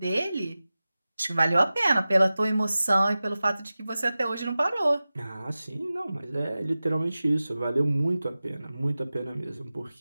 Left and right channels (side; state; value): both; inverted; correlation -0.96